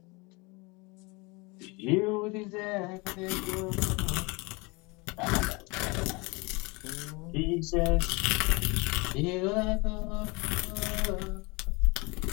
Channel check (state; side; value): quieter; right; 26.8 dB